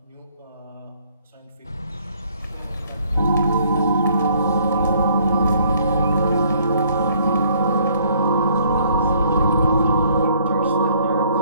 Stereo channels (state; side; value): inverted; both; correlation -0.63